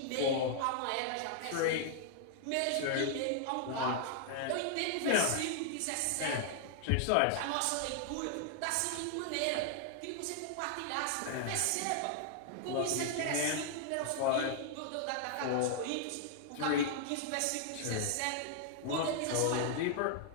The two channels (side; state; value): both; different; correlation 0.00